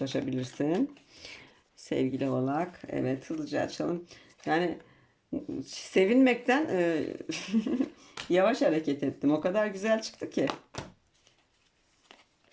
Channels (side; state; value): both; identical; correlation 1.00